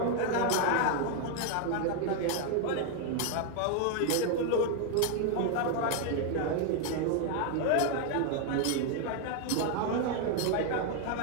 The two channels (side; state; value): both; different; correlation 0.01